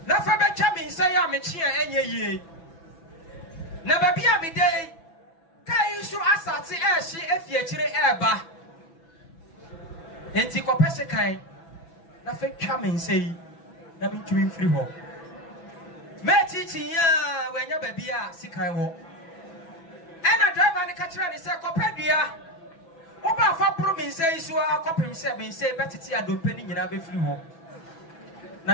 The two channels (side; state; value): right; late; 6.0 ms